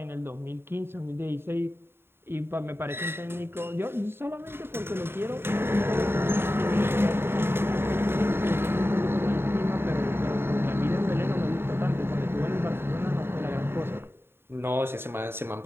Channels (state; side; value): late; left; 0.11 ms